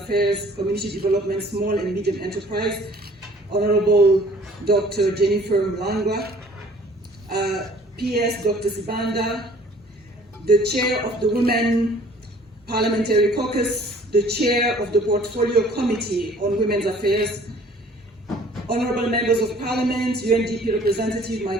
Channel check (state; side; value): normal; both; correlation 0.54